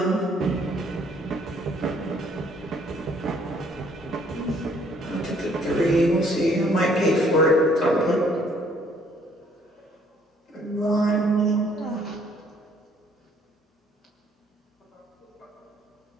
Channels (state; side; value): normal; both; correlation 0.63